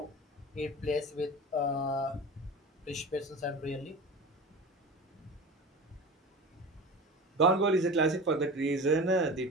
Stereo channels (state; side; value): normal; both; correlation 0.32